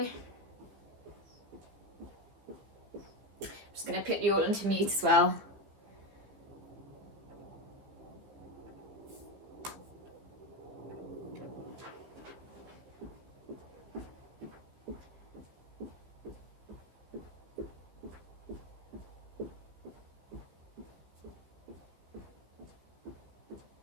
I'm just going to put you all into mute as well.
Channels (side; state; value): left; late; 15 ms